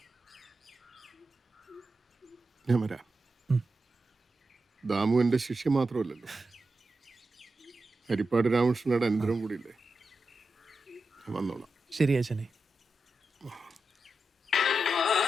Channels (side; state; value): both; normal; correlation 0.90